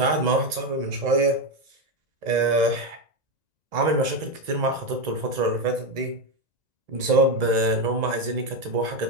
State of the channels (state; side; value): late; left; 1.9 ms